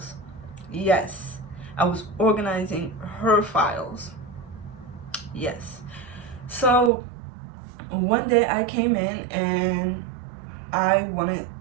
Yes, I was organizing her files. Yes. So one day I came in and I wanted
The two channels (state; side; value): drops out; left; at 6.9 s